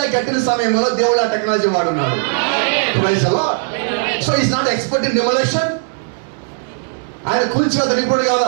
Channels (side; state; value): left; silent; digital silence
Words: కట్టిన సమయంలో దేవుడు ఆ టెక్నాలజీ వాడున్నాడు. So is not expert in demolition. ఆయన కూల్చివేత నిపుణుడు